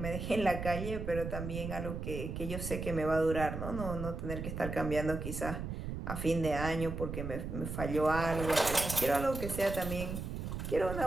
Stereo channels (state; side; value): noise; right; rumble, 5 dB below the sound